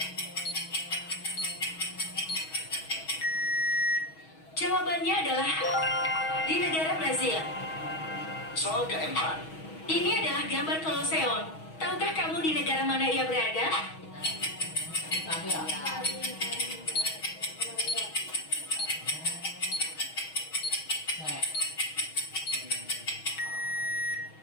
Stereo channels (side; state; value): right; late; 6.3 ms